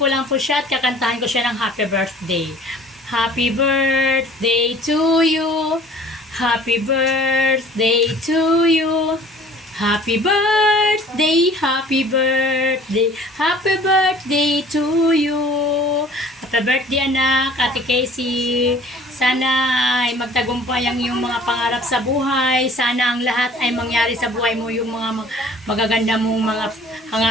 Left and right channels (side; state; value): both; normal; correlation 0.51